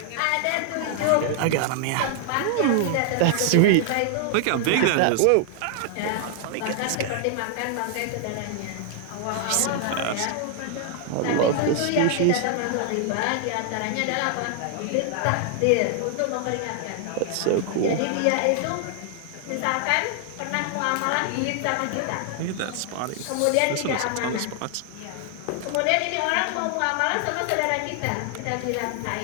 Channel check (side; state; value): both; different; correlation 0.00